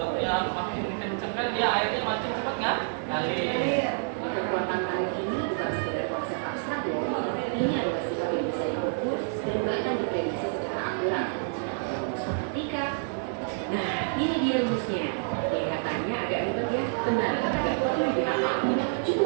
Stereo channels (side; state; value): left; silent; 59 dB below the other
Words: makin kenceng kan dia airnya makin cepat nggak? Ngalir. Kekuatan tarik ini bukan sekedar konsep abstrak loh. Ini adalah sifat yang bisa diukur dan bahkan diprediksi secara akurat. Rumus matematika. Nah, ini dia rumusnya. Kelihatannya agak ribet ya, benar, agak perlu dihafal.